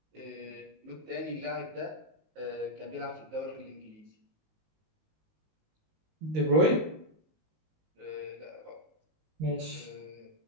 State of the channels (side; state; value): left; late; 19 ms